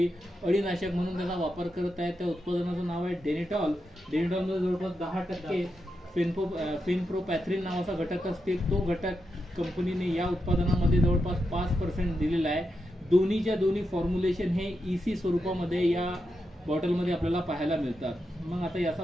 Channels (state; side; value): normal; both; correlation 0.86